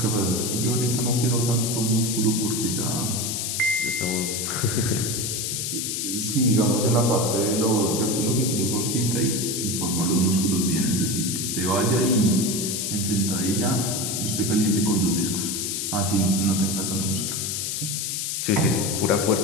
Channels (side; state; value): left; noise; hiss, 2 dB below the sound